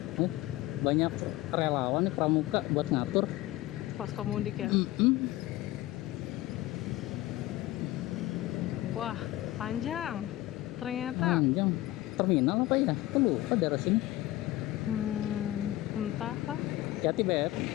Banyak relawan nih pramuka buat ngatur Posko mudik ya. Wah, panjang. Ternyata. Panjang. Terminal apa ya? Aku lupa daerah sini. Entah lah. Hati-hati, Beb.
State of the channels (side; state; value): right; quieter; 16.7 dB